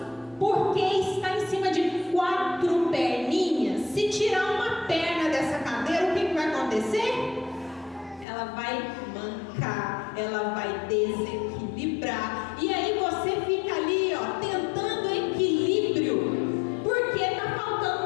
porque está em cima de 4 perninhas. Se tirar uma perna dessa cadeira, o que vai acontecer? Ela vai mancar, ela vai desequilibrar. E aí você fica ali, ó, tentando equilíbrio, porque está faltando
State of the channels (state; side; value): drops out; right; at 8.2 s